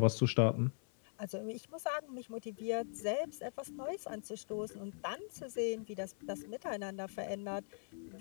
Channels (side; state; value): right; silent; 51 dB below the other